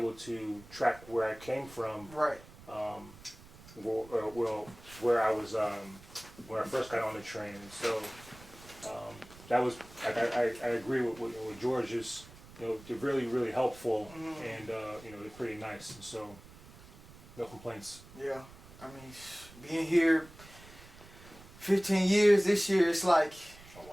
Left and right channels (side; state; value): right; noise; rumble, 20 dB below the sound